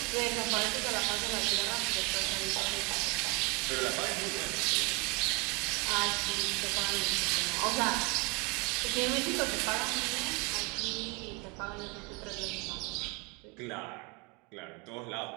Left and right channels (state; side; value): quieter; left; 29.6 dB